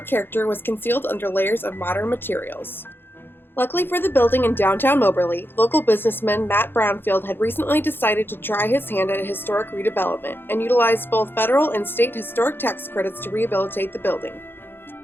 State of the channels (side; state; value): right; late; 0.10 ms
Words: character was concealed under layers of modern materials. Luckily for the building in downtown Moberly, local businessman Matt Brownfield had recently decided to try his hand at a historic redevelopment and utilized both federal and state historic tax credits to rehabilitate the building.